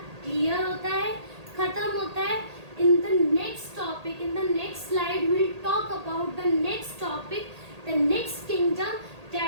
क्लियर होता है, खत्म होता है. इन the next topic, in the next slide will talk about the next topic, the next kingdom,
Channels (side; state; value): left; late; 1.8 ms